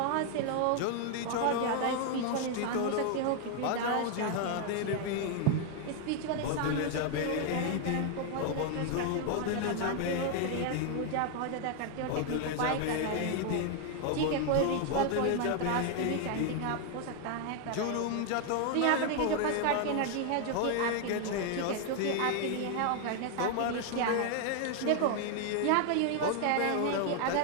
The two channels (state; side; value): different; both; correlation 0.00